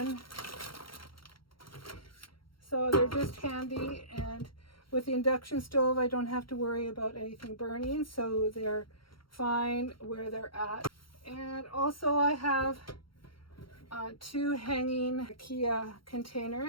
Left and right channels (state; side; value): late; right; 0.73 ms